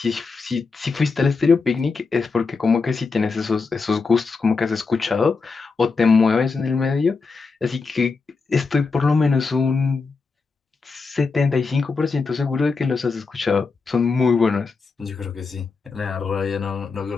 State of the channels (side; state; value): right; quieter; 4.5 dB